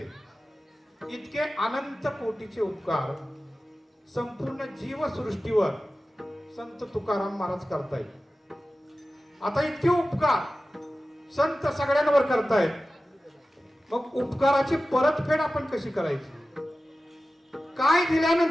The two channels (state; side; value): normal; both; correlation 0.95